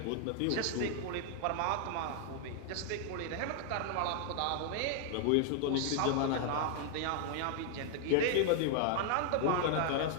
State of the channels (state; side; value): different; both; correlation 0.00